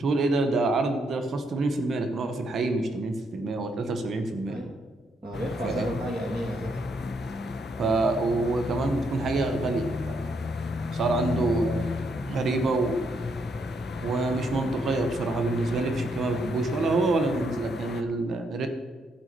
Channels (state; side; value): normal; both; correlation 0.76